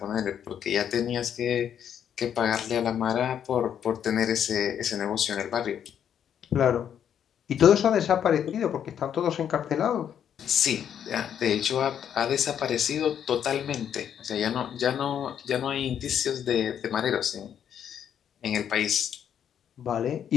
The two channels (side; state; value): right; quieter; 9.0 dB